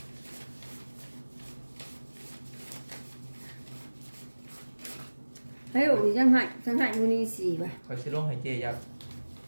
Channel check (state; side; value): inverted; both; correlation -1.00